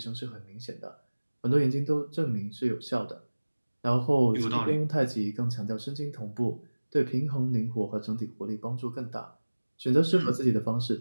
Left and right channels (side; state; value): both; inverted; correlation -1.00